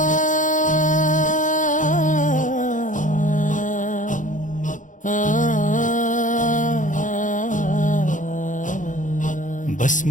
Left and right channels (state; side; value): late; right; 0.37 ms